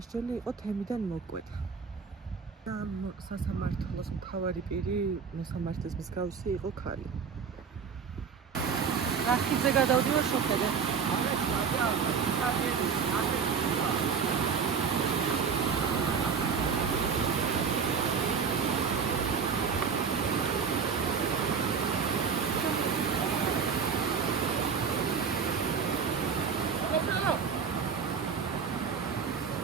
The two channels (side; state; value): left; quieter; 6.0 dB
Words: იყო თემიდან მოკვეთა. ამ სასამართლოს მთავარი პირი, მოსამართლის მსგავსი იყო ქალი. რახიძე გადავდივარ შოხედე.